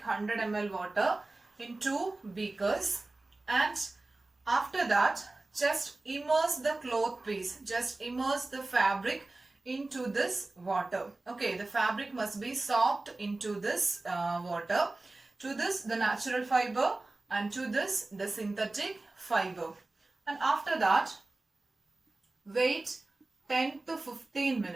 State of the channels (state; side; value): quieter; left; 3.1 dB